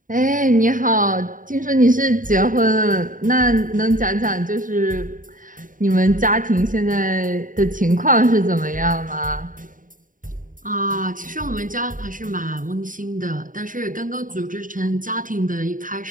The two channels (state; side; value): late; left; 0.39 ms